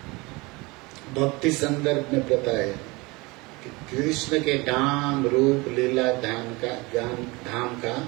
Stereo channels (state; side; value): quieter; left; 24.6 dB